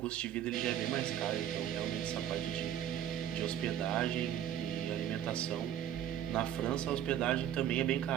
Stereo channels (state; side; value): quieter; left; 10.5 dB